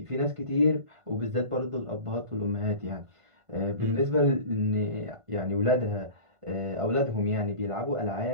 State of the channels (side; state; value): left; late; 1.5 ms